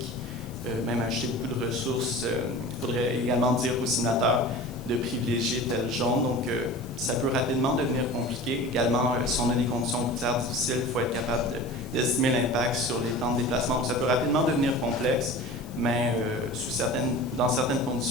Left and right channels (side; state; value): left; noise; hiss, 24 dB below the sound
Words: même acheter beaucoup de ressources, il faudrait également dire aux signataires de privilégier tel jaune. Donc, ça peut rapidement devenir compliqué. Également, si on a des conditions routières difficiles, il faut être capable d'estimer l'impact sur les temps de déplacement. Donc, ça peut rapidement devenir complexe, mais dans certaines